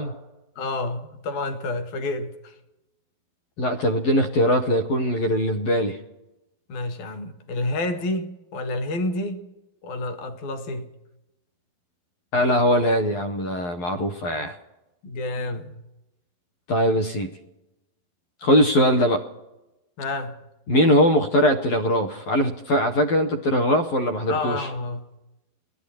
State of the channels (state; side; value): late; right; 11 ms